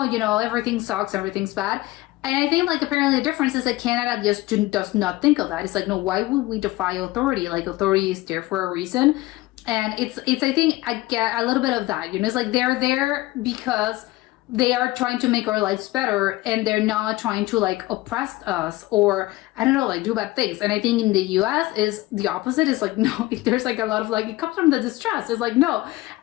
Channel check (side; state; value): right; quieter; 19.2 dB